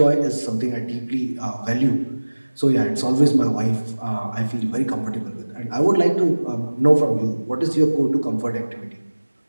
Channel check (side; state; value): both; inverted; correlation -1.00